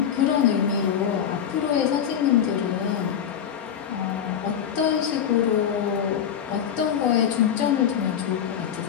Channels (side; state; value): right; quieter; 8.7 dB